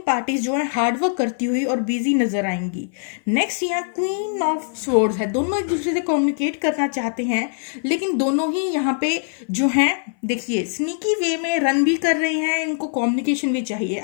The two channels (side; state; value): right; silent; 58 dB below the other